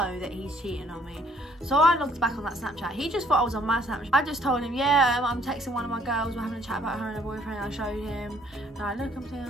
that he's cheating on me. So I looked back on that Snapchat. He just thought I was on my Snapchat. I just told him, yeah, I'm texting one of my girls, we're having a chat about her and her boyfriend. I showed him, and I look, I'm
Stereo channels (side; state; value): both; normal; correlation 0.62